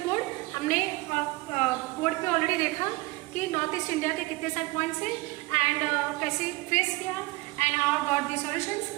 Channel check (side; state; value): left; quieter; 22.0 dB